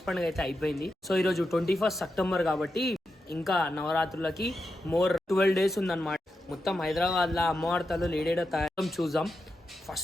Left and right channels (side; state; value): both; normal; correlation 0.88